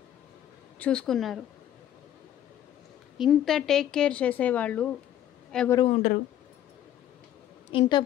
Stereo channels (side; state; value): right; quieter; 11.3 dB